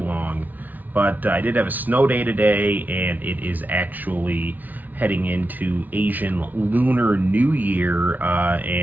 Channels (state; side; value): late; left; 0.079 ms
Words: but I did have a snow day today, and it is actually heading into Asian Lunar New Year,